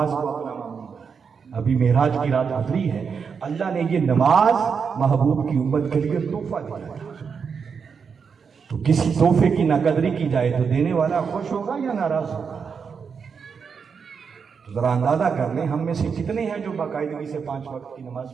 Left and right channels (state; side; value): quieter; left; 6.1 dB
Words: کو اپنا معمول، ابھی معراج کی رات گزری ہے، اللہ نے یہ نماز محبوب کی امت کے لیے تحفہ دیا تھا۔ تو کسی تحفے کی نہ قدری کی جائے تو دینے والا خوش ہوگا یا ناراض ہوگا؟ تو ذرا اندازہ کر لیں ہم میں سے کتنے ہیں جو باقاعدگی سے 5 وقت کی نماز